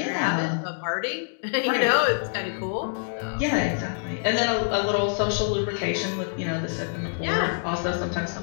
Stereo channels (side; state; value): right; silent; digital silence